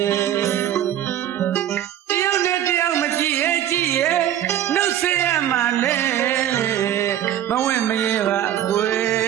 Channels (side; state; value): left; quieter; 11.3 dB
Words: တယောက်နဲ့တယောက်မကြည့်ရဲ့ကြည့်ရဲ့နှုတ်ဆက်ရမှာလဲမဝင့်မရဲပါကွယ